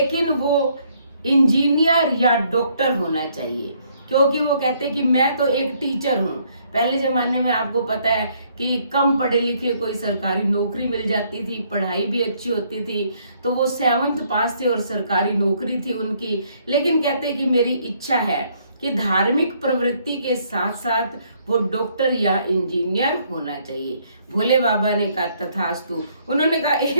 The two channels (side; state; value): both; inverted; correlation -0.68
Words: वो इंजीनियर या डॉक्टर होना चाहिए। क्योंकि वो कहते कि मैं तो एक टीचर हूँ। पहले जमाने में आपको पता है कि कम पढ़े लिखे कोई सरकारी नौकरी मिल जाती थी, पढ़ाई भी अच्छी होती थी, तो वो 7th पास थे और सरकारी नौकरी थी उनकी। लेकिन कहते कि मेरी इच्छा है कि धार्मिक प्रवृत्ति के साथ साथ वो डॉक्टर या इंजीनियर होना चाहिए। भोले बाबा ने कहा तथास्तु। उन्होंने कहा